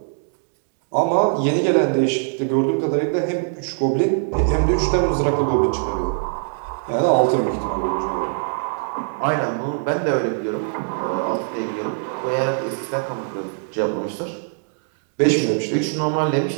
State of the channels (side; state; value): left; silent; digital silence